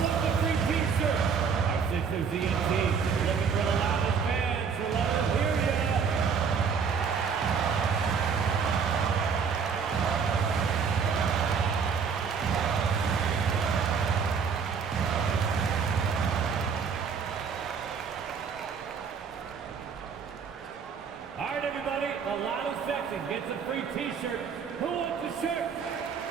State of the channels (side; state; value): left; quieter; 6.2 dB